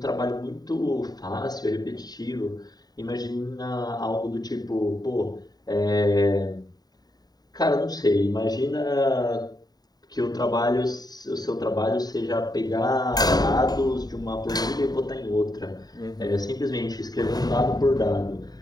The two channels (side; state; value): right; late; 0.19 ms